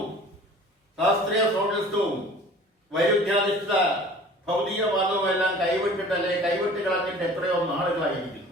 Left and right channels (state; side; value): normal; both; correlation 0.46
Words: ശാസ്ത്രീയ സോഷ്യലിസവും വൈരുദ്ധ്യാധിഷ്ഠിത ഭൗതികവാദവും എല്ലാം കൈവിട്ട് കളഞ്ഞിട്ട് എത്രയോ